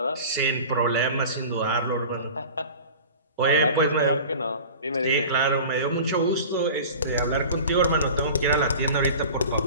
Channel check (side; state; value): both; inverted; correlation -0.38